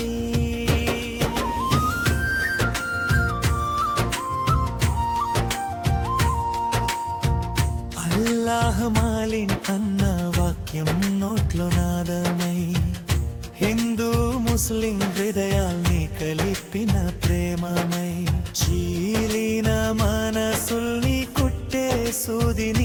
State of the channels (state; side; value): identical; both; correlation 1.00